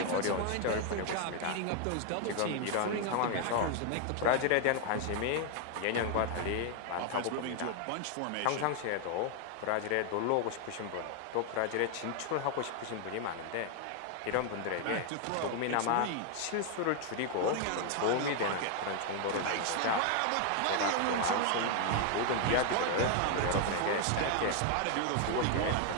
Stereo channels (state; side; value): different; both; correlation 0.00